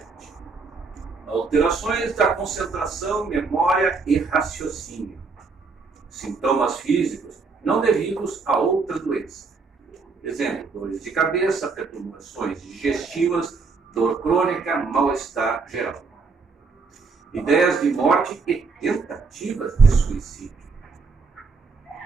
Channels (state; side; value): quieter; left; 4.5 dB